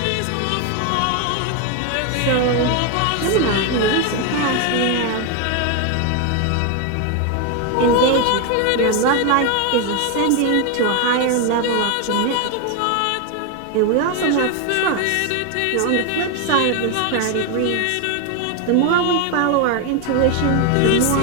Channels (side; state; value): both; different; correlation 0.01